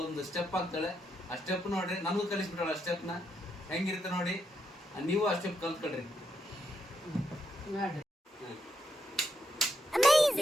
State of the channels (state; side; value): normal; both; correlation 0.80